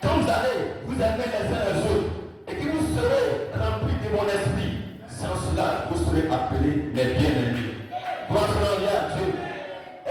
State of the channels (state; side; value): identical; both; correlation 1.00